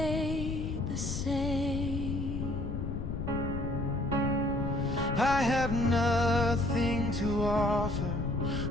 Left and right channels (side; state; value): left; noise; rumble, 3 dB below the sound